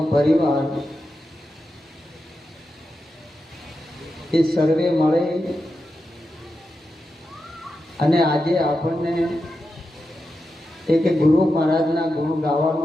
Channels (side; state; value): both; normal; correlation 0.89